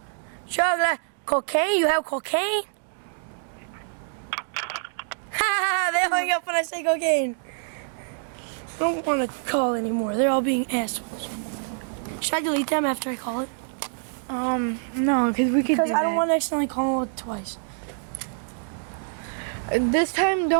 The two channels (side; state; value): left; silent; digital silence